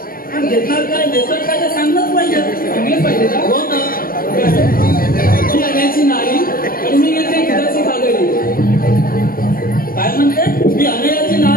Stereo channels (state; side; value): late; right; 0.42 ms